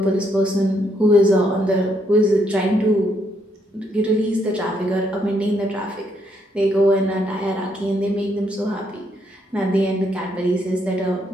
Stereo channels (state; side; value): normal; both; correlation 0.74